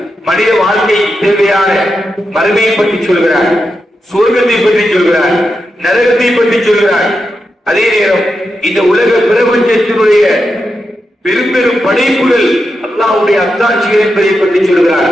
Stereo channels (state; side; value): normal; both; correlation 0.87